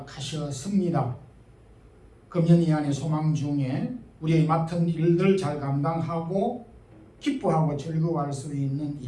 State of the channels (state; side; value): identical; both; correlation 1.00